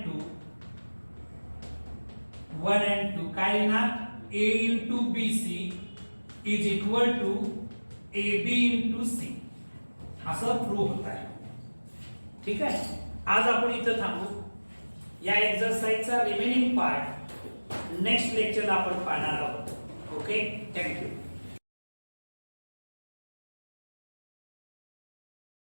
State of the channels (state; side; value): inverted; both; correlation -1.00